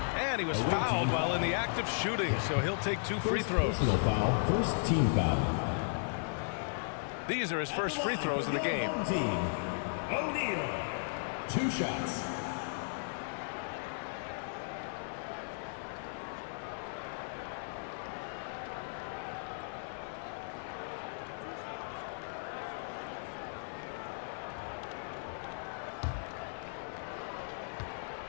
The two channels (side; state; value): right; silent; 54 dB below the other